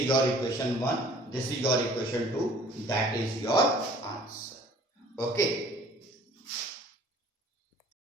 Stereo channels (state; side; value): normal; both; correlation 0.53